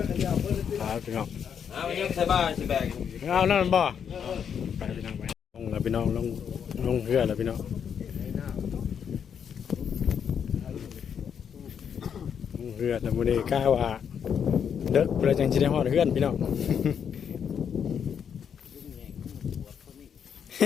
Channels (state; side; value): quieter; right; 7.7 dB